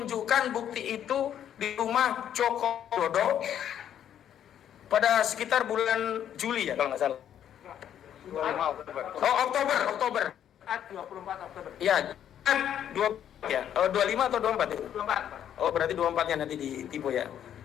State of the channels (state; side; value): quieter; right; 10.0 dB